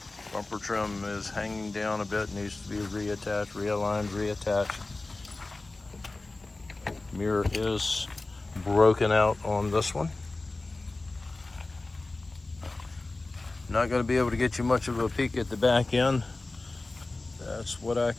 Bumper trim is hanging down a bit, needs to be reattached, realigned, reattached. Mirror is broken out on this one. Not going to be able to get you much of a peek at the back end. That's what I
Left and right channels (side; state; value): right; quieter; 3.2 dB